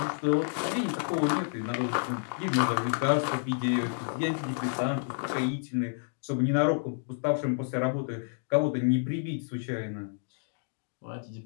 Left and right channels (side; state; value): right; silent; digital silence